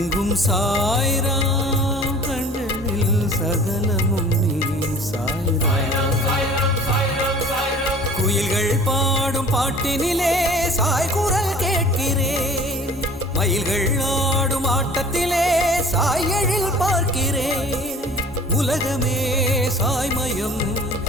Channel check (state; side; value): normal; both; correlation 0.46